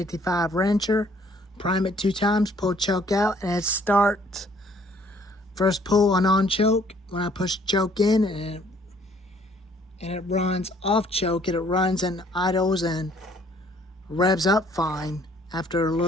wrencher, prime it 2 times, pull choke out, and it starts. First pull on choke. When I push choke in, and it runs off choke, it runs and idles and revs up fine after a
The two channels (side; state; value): both; normal; correlation 0.61